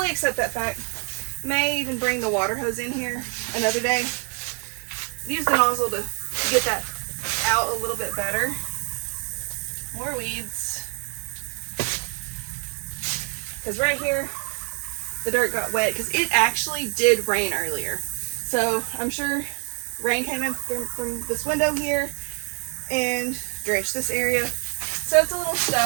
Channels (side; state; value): left; quieter; 39.7 dB